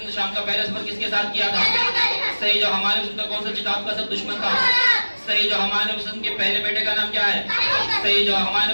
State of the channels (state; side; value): inverted; both; correlation -1.00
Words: ने शाम का पहला सफर किसके साथ किया था? सही जवाब। हमारे रसूल का कौन सा किताब का सब दुश्मन था? सही जवाब। हमारे नबी वसल्लम के पहले बेटे का नाम क्या है? सही जवाब। हमारे